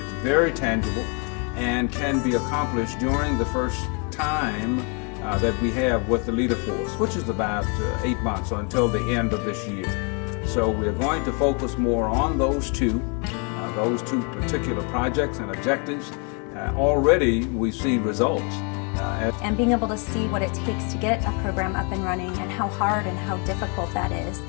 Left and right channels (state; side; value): quieter; right; 36.2 dB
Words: tangible and can be accomplished during the first time that we have with the Leaderforce, which is about 8 months, or until the end of this year. So we're going to focus more on those two particular projects and objectives. Already we see results. And being able to see what it takes to get a program up and running and how hard and how difficult that is,